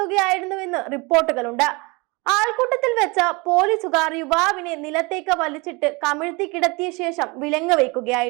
റിപ്പോർട്ടുകളുണ്ട്. ആൾക്കൂട്ടത്തിൽ വെച്ച പോലീസുകാർ യുവാവിനെ നിലത്തേക്ക് വലിച്ചിട്ട് കമിഴ്ത്തി കിടത്തിയ ശേഷം വിലങ്ങ്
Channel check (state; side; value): quieter; left; 26.9 dB